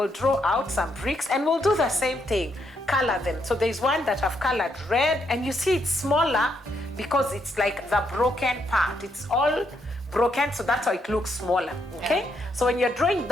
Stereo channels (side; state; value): both; normal; correlation 0.76